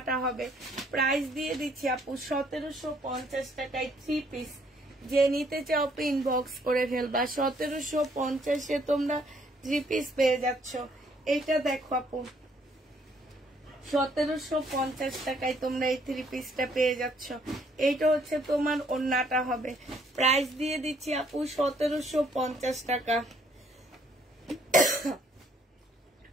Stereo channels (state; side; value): normal; both; correlation 0.66